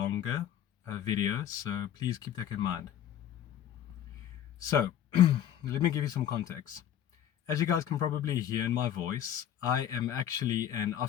video, so please keep that in mind. So, let me give you some context. As you guys can probably hear in my voice, I am actually an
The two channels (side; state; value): right; quieter; 10.3 dB